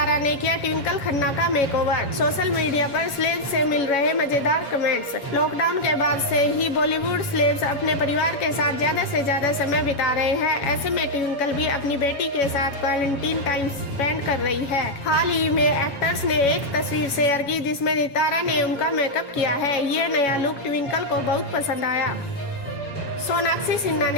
ने किया ट्विंकल खन्ना का मेकओवर। सोशल मीडिया पर स्लेब से मिल रहे मजेदार कमेंट्स। लॉकडाउन के बाद से ही बॉलीवुड स्लेब्स अपने परिवार के साथ ज्यादा से ज्यादा समय बिता रहे हैं। ऐसे में ट्विंकल भी अपनी बेटी के साथ क्वारंटीन टाइम स्पेंड कर रही है। हाल ही में एक्टर्स ने एक तस्वीर शेयर की जिसमें नितारा ने उनका मेकअप किया है। ये नया लुक ट्विंकल को बहुत पसंद आया। सोनाक्षी सिन्हा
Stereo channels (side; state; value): right; late; 7.2 ms